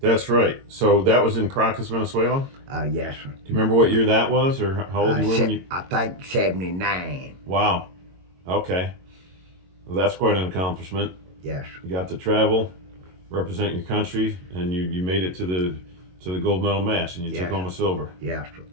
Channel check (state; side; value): late; left; 22 ms